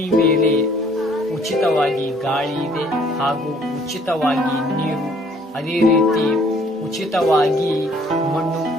ಮೇಲೆ ಉಚಿತವಾಗಿ ಗಾಳಿ ಇದೆ ಹಾಗೂ ಉಚಿತವಾಗಿ ನೀರು, ಅದೇ ರೀತಿ ಉಚಿತವಾಗಿ ಮಣ್ಣು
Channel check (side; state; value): both; normal; correlation 0.60